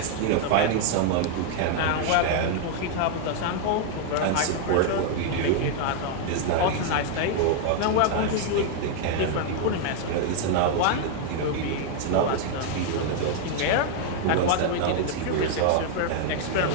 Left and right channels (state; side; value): different; both; correlation 0.00